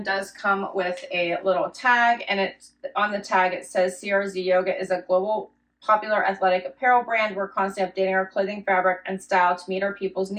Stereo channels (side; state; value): both; identical; correlation 1.00